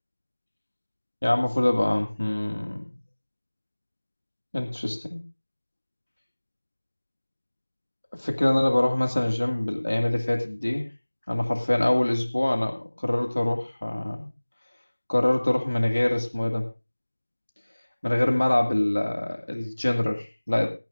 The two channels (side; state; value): both; inverted; correlation -1.00